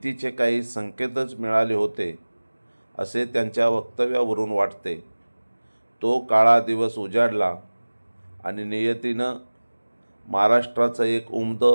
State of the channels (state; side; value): inverted; both; correlation -1.00